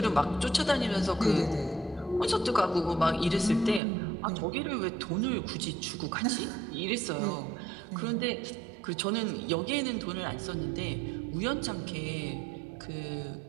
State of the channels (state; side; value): drops out; left; at 3.8 s